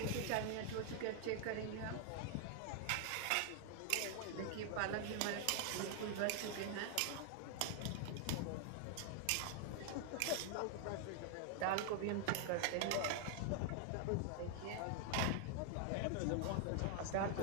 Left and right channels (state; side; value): different; both; correlation 0.00